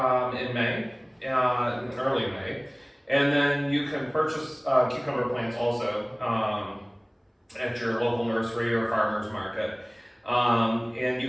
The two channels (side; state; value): both; identical; correlation 1.00